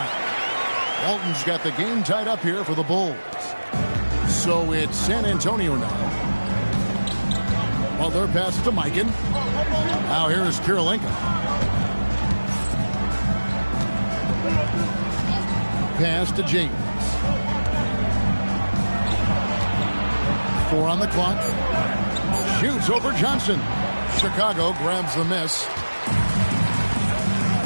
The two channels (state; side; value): inverted; both; correlation -1.00